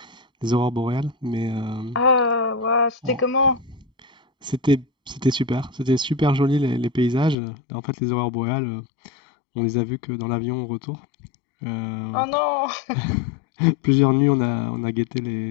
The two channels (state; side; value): drops out; right; at 7.4 s